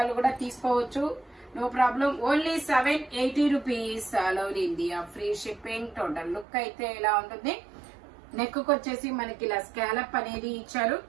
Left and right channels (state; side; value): drops out; left; at 6.5 s